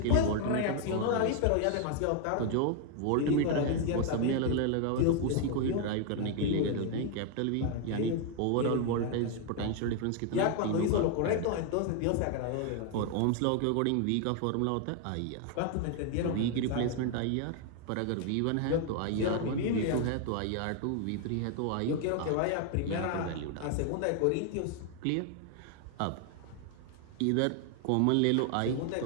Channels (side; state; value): both; different; correlation 0.00